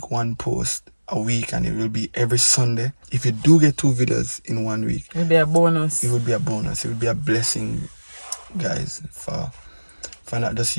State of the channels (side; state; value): both; inverted; correlation -1.00